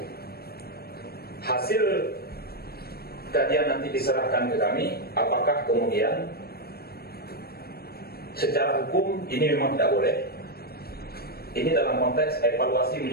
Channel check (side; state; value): right; late; 0.45 ms